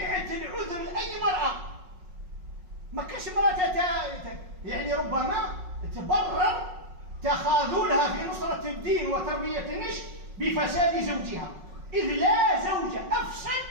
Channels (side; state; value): left; late; 5.4 ms